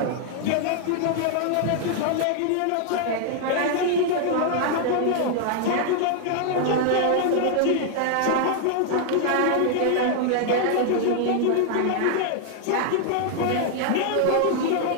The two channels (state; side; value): different; both; correlation 0.00